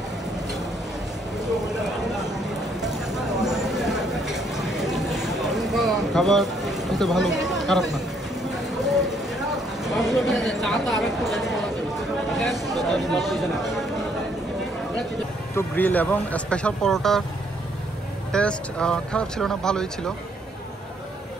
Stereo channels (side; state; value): both; normal; correlation 0.68